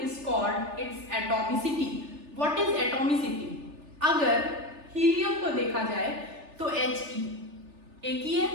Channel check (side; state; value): left; late; 3.4 ms